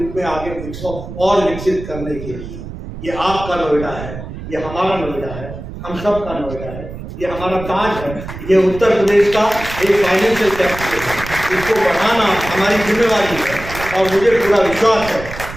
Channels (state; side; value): noise; right; rumble, 11 dB below the sound